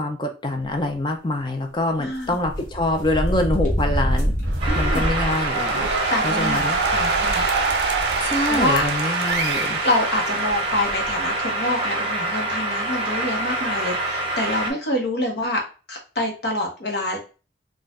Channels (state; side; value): normal; both; correlation 0.17